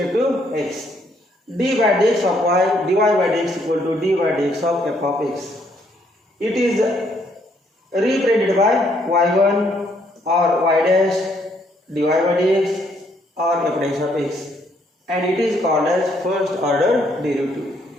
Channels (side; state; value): both; normal; correlation 0.70